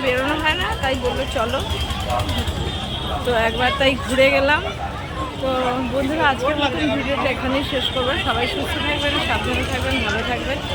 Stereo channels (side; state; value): both; identical; correlation 1.00